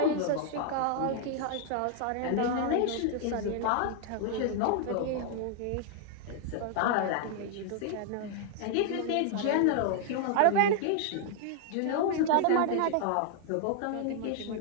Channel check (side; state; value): both; different; correlation 0.00